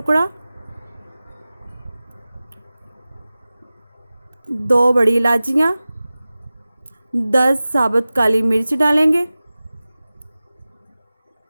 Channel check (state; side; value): inverted; both; correlation -0.97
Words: 2 बड़ी इलायचियाँ, 10 साबुत काली मिर्च डालेंगे